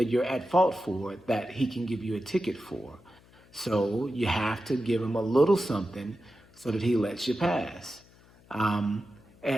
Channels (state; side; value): noise; left; hum, 27 dB below the sound